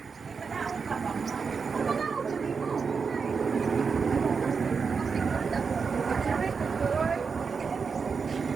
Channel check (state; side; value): quieter; left; 5.4 dB